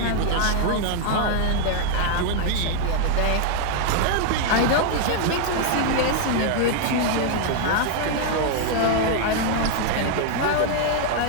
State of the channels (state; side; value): different; both; correlation 0.00